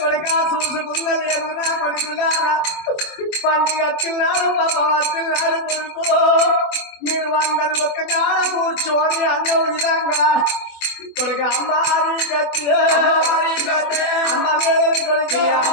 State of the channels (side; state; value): right; late; 24 ms